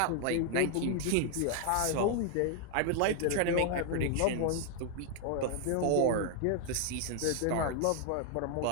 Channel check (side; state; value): both; different; correlation 0.00